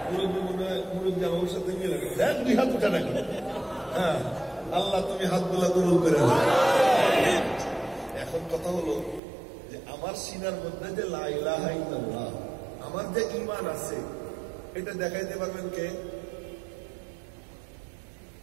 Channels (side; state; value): left; drops out; at 9.2 s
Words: মুরব্বী মনে হয় মুরব্বী আমার সাথে গেলে দেখ 2 হাত উঠা নাকি। হ্যাঁ, আল্লাহ তুমি হাতগুলা কবুল করে দাও। এখন কথা হলো যে আমার সিনার মধ্যে যে লা ইলাহা ইল্লাল্লাহ, আমার যে ঈমান আছে, এটা দেখাইতে পারবেন কে?